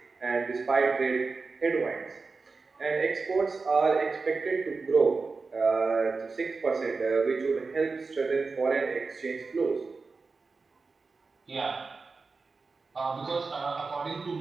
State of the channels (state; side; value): quieter; left; 4.2 dB